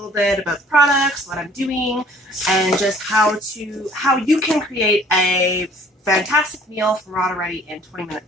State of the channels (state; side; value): normal; both; correlation 0.54